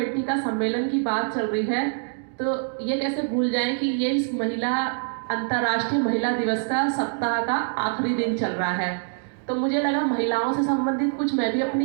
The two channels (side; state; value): left; silent; digital silence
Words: का सम्मेलन की बात चल रही है, तो ये कैसे भूल जाएं कि ये इस अंतर्राष्ट्रीय महिला दिवस का सप्ताह का आखिरी दिन चल रहा है। तो मुझे लगा महिलाओं से संबंधित कुछ मैं भी